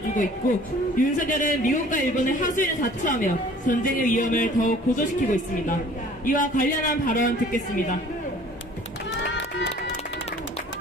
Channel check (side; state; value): both; normal; correlation 0.51